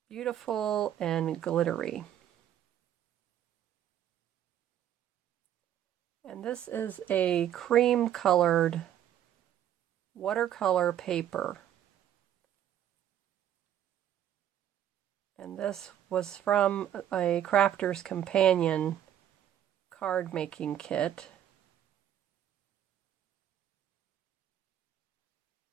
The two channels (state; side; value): quieter; left; 10.7 dB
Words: beautiful and glittery. And this is a cream colored watercolor paper. And this was from a Crafter's Companion card making kit.